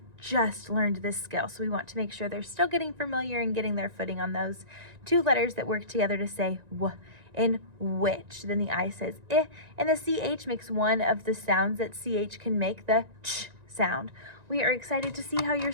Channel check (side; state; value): left; late; 1.9 ms